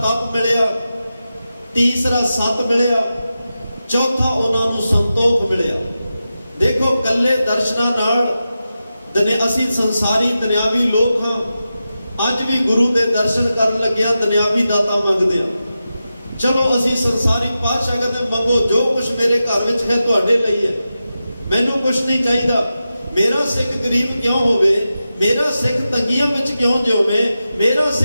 ਮਿਲਿਆ, ਤੀਸਰਾ ਸਤ ਮਿਲਿਆ, ਚੌਥਾ ਉਹਨਾਂ ਨੂੰ ਸੰਤੋਖ ਮਿਲਿਆ। ਦੇਖੋ ਕੱਲੇ ਦਰਸ਼ਨਾਂ ਨਾਲ ਅਸੀਂ ਸੰਸਾਰੀ ਦੁਨਿਆਵੀ ਲੋਕ ਹਾਂ। ਅੱਜ ਵੀ ਗੁਰੂ ਦੇ ਦਰਸ਼ਨ ਕਰਨ ਲੱਗਿਆ ਦੁਨਿਆਵੀ ਦਾਤਾ ਮੰਗਦੇ ਆ। ਚਲੋ ਅਸੀਂ ਸੰਸਾਰੀ ਪਾਤਸ਼ਾਹ ਕਹਿੰਦੇ ਮੰਗੋ ਜੋ ਕੁਝ ਮੇਰੇ ਘਰ ਵਿੱਚ ਹੈ ਤੁਹਾਡੇ ਲਈ ਹੈ, ਮੈਨੂੰ ਕੁਝ ਨਹੀਂ ਚਾਹੀਦਾ। ਮੇਰਾ ਸਿੱਖ ਗਰੀਬ ਕਿਉਂ ਹੋਵੇ, ਮੇਰਾ ਸਿੱਖ ਤੰਗੀਆਂ ਵਿੱਚ ਕਿਉਂ ਜਿਉਵੇ, ਮੇਰਾ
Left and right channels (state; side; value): inverted; both; correlation -0.91